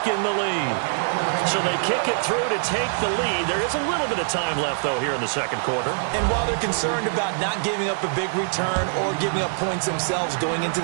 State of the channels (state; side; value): silent; left; digital silence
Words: the lead. So they kick it through to take the lead. There is a little bit of time left, though, here in the second quarter. And while they're concerned about not giving up a big return or giving up points themselves going into